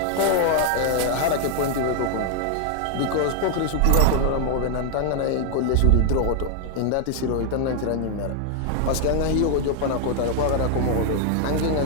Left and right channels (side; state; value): both; different; correlation 0.00